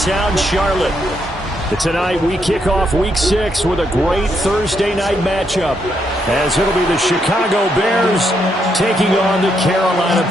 Town, Charlotte. Tonight we kick off Week 6 with a great Thursday night matchup, as it'll be the Chicago Bears taking on the Carolina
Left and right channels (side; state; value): both; normal; correlation 0.77